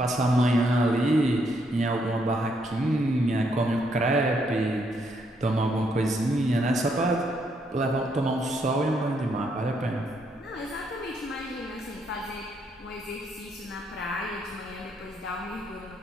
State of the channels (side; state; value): both; normal; correlation 0.74